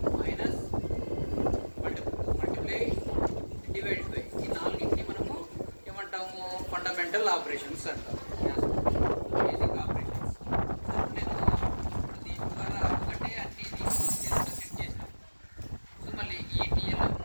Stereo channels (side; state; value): both; inverted; correlation -1.00